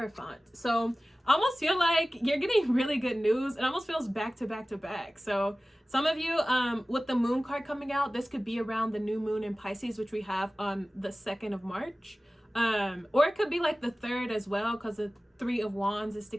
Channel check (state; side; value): normal; both; correlation 0.97